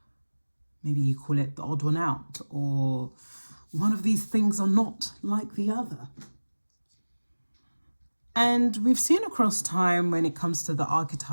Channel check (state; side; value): inverted; both; correlation -1.00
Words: maybe you call it the odd one out, or one of these things are not like the other. And we've seen across time when it comes to the